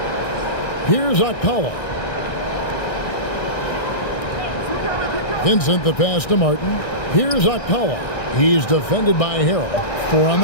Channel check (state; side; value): late; right; 1.6 ms